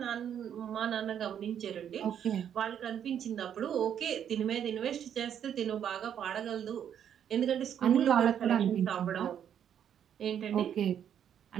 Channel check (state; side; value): quieter; left; 9.1 dB